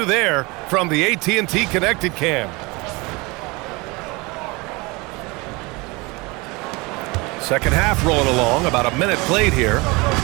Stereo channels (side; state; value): left; quieter; 25.4 dB